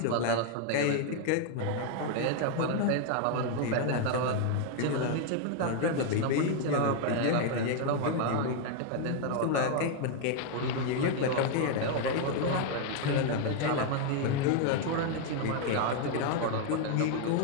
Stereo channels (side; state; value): both; different; correlation 0.00